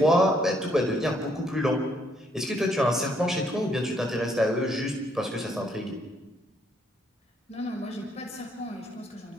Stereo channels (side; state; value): both; normal; correlation 0.70